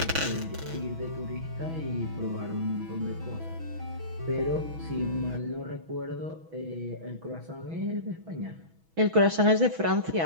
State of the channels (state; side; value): late; left; 6.2 ms